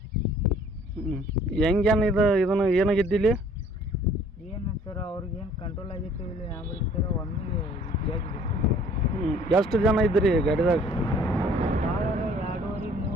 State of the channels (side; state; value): both; normal; correlation 0.56